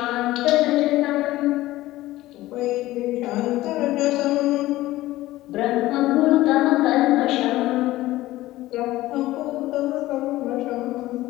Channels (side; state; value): right; quieter; 16.7 dB